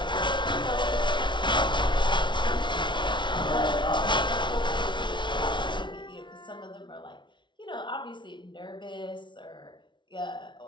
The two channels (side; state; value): right; late; 0.23 ms